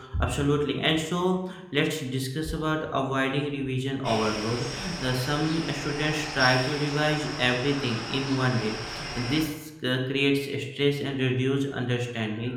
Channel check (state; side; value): identical; both; correlation 1.00